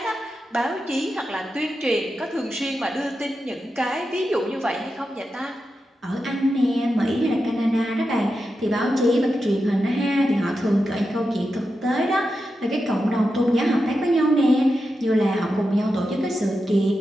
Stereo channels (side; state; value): both; normal; correlation 0.89